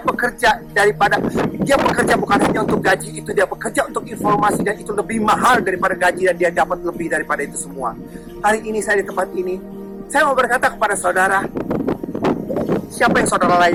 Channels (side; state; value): both; identical; correlation 1.00